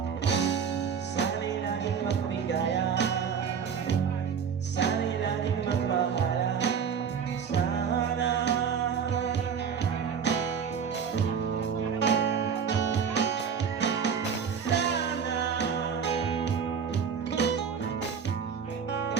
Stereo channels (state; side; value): quieter; left; 6.9 dB